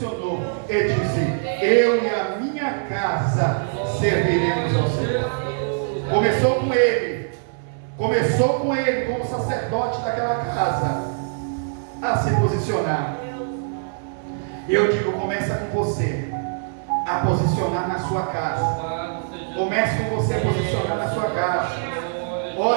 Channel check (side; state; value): left; silent; digital silence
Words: e disse: eu e a minha casa serviremos ao Senhor. Começou com ele como sacerdote daquela casa a se posicionar. E eu digo, começa com você a posicionar na sua casa. Comece com você a posicionar na sua casa.